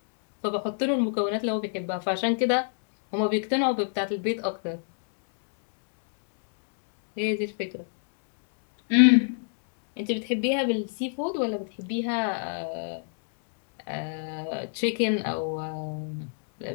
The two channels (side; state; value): right; silent; digital silence